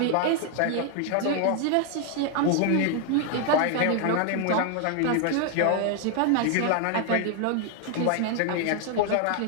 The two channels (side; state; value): both; different; correlation 0.00